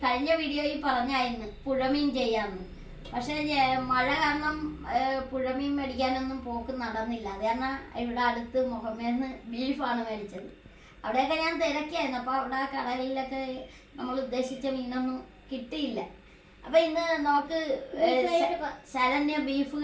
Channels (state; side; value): identical; both; correlation 1.00